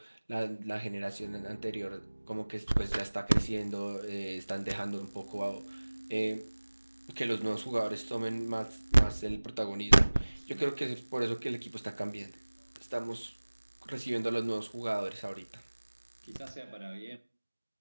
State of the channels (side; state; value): both; inverted; correlation -1.00